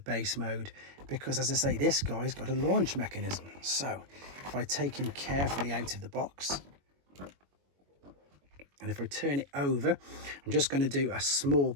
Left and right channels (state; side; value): late; left; 21 ms